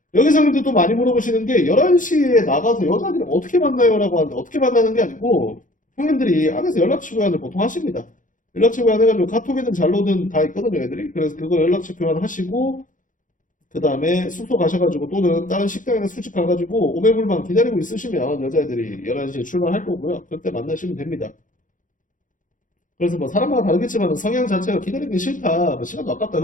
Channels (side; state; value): right; late; 0.38 ms